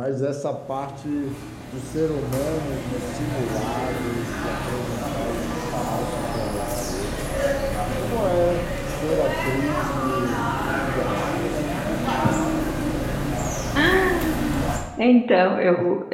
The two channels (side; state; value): both; identical; correlation 1.00